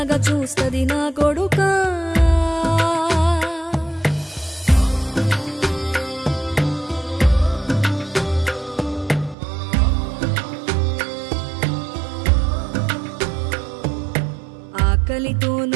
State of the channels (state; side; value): drops out; left; at 9.3 s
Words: చూస్తది నా కొడుకా ఆకలితో